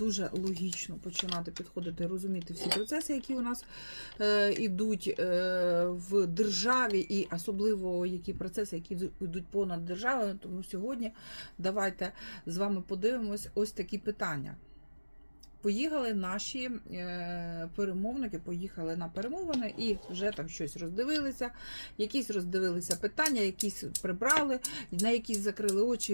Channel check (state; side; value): inverted; both; correlation -1.00